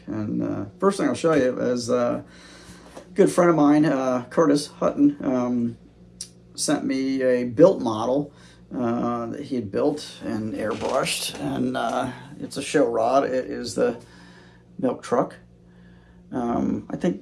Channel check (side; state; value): both; identical; correlation 1.00